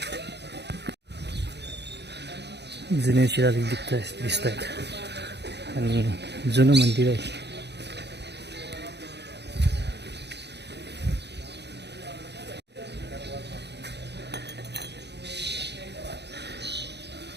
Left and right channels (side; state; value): left; late; 0.49 ms